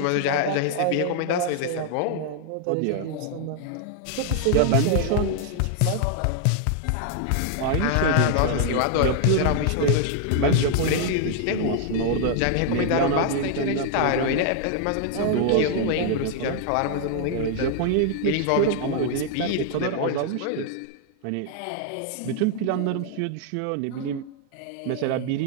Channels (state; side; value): different; both; correlation 0.00